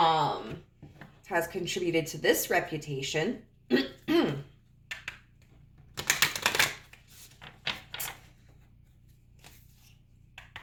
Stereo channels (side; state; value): both; identical; correlation 1.00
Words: contributed to this reputation.